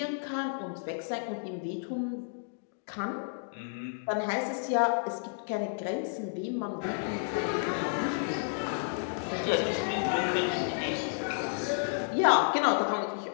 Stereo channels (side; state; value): right; silent; digital silence